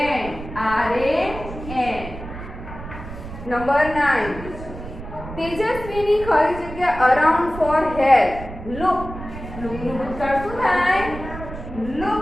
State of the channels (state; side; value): noise; right; rumble, 11 dB below the sound